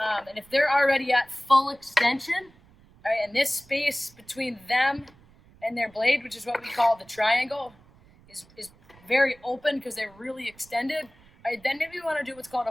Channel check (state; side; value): noise; right; rumble, 27 dB below the sound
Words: And if they're already at full extension, right, and this space between them and their blade, which is what we call the triangle, is very open because they're really extended, right, then maybe we want to do what's called